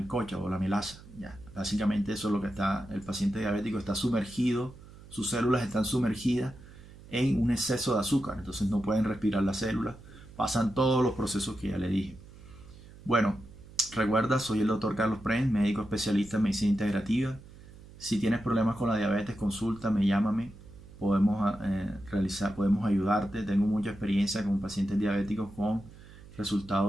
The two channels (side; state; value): right; noise; hum, 19 dB below the sound